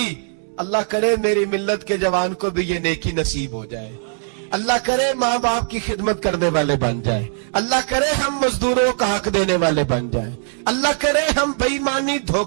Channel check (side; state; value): left; silent; digital silence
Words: اللہ کرے میری ملت کے جوان کو بھی یہ نیکی نصیب ہو جائے، اللہ کرے ماں باپ کی خدمت کرنے والے بن جائے۔ اللہ کرے ہم مزدوروں کا حق دینے والے بن جائیں، اللہ کرے ہم بے ایمانی